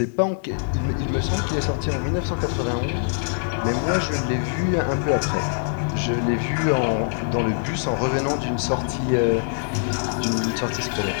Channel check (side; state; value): right; silent; 63 dB below the other